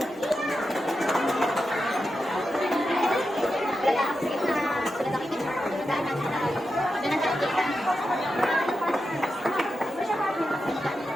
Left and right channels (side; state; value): both; normal; correlation 0.89